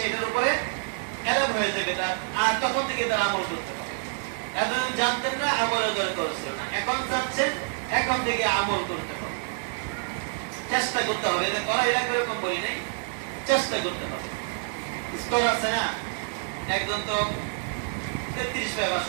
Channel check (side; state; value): left; silent; 60 dB below the other